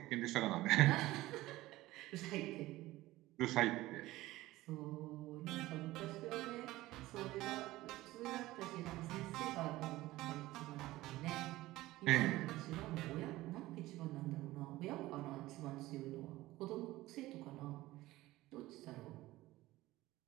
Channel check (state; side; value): quieter; left; 17.5 dB